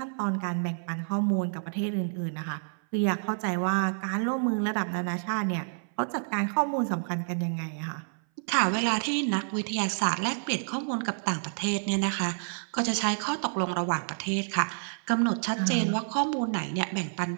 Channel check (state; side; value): silent; left; 58 dB below the other